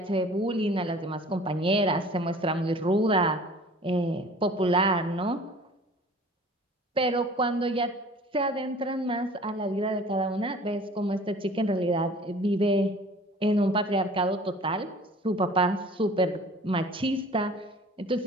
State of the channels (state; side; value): normal; both; correlation 0.47